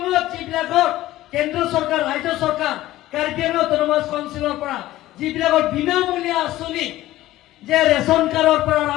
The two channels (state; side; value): quieter; right; 15.7 dB